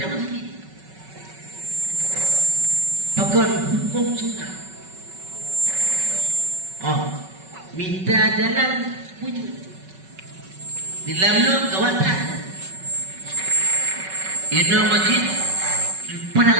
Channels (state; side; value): late; left; 5.3 ms